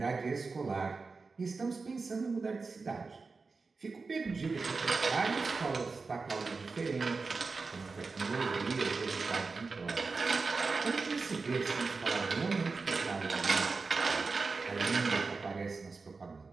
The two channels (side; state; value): left; quieter; 4.2 dB